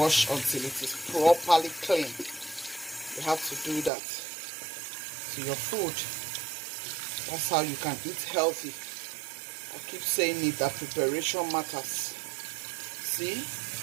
until it is properly clean. You have to do that to your food. That's how you can eat healthy. I keep saying it, that preparation matters. See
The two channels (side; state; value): left; drops out; at 3.9 s